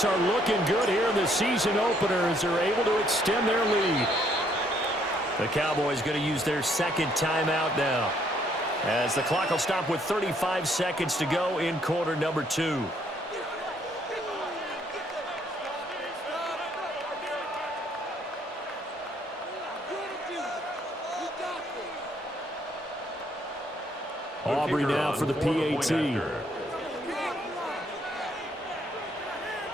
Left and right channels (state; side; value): normal; both; correlation 0.68